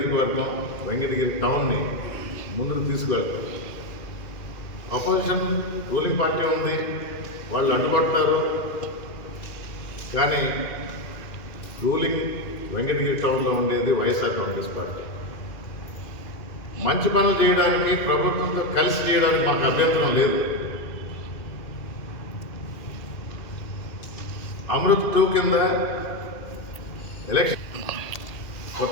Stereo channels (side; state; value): right; late; 2.3 ms